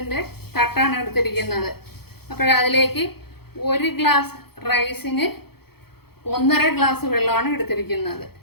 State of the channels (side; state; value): right; late; 0.96 ms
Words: തട്ടാണ് എടുത്തിരിക്കുന്നത്. അതിലേക്ക് 1 ഗ്ലാസ് റൈസിന് 1.5 ഗ്ലാസ് വെള്ളമാണ് എടുത്തിരിക്കുന്നത്.